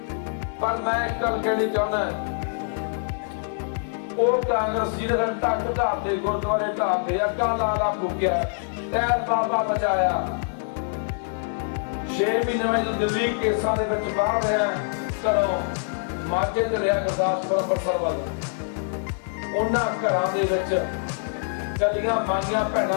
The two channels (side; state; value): right; silent; digital silence